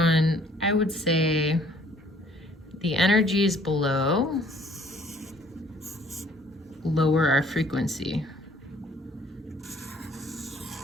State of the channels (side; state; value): both; normal; correlation 0.59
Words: I would say, the energies below lower our frequency.